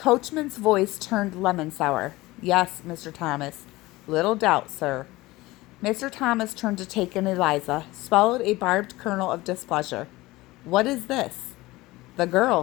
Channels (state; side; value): quieter; right; 19.6 dB